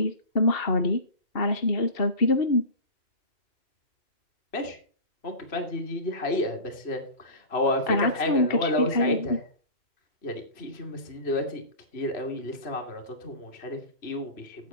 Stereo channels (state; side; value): late; right; 3.0 ms